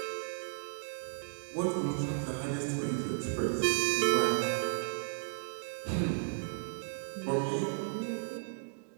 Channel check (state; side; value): silent; left; digital silence